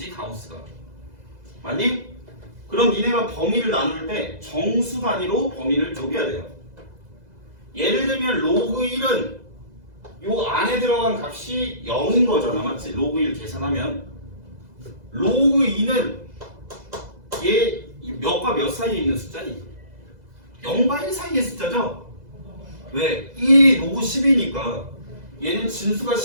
가우스가. 맞니? 그럼 니네가 범위를 나눌 때 정수 단위로 범위를 쪼개야 돼요. 예를 들면 로그 1은 요 안에 들어간 값이 0인 거잖아. 맞지? 로그 1 계산하면 로그 2는 얘 몇과 몇 사이에 있는 숫자니? 0과 1 사이의 숫자죠? 왜? 1이 로그 10이니까 얘는 진수가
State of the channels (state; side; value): late; left; 2.0 ms